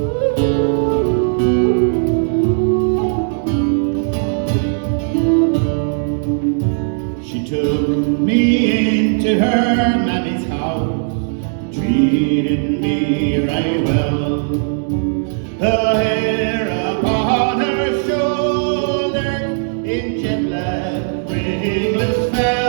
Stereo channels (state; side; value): silent; left; 68 dB below the other